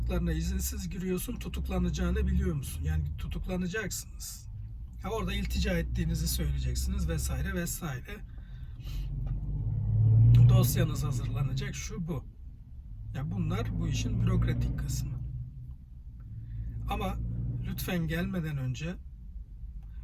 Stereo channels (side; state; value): both; identical; correlation 1.00